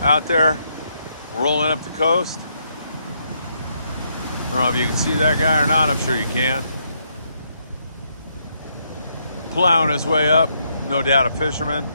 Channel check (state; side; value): inverted; both; correlation -0.75